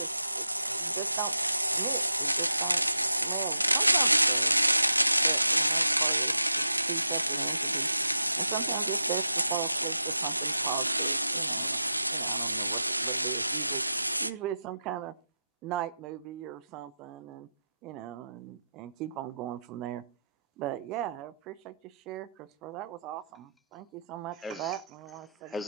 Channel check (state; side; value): inverted; both; correlation -0.86